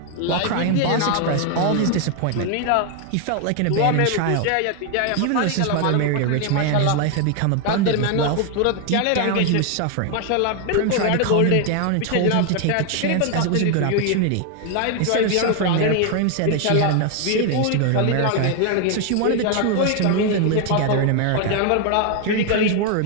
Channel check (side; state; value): both; different; correlation 0.01